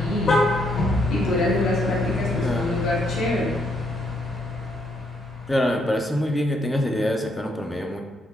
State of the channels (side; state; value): both; normal; correlation 0.74